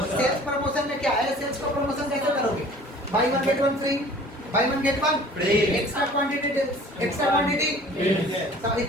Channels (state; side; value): normal; both; correlation 0.48